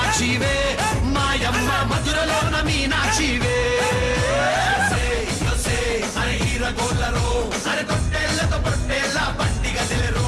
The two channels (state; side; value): identical; both; correlation 1.00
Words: మాయమ్మ మధురలోన మీనాక్షివే అరే హీరగోళ్ళరో అరే తొట్టెళ్ళతో పొట్టెళ్ళ పండిగ తెలిరో